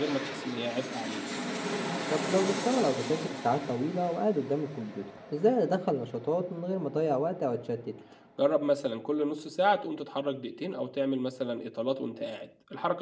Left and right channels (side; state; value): both; identical; correlation 1.00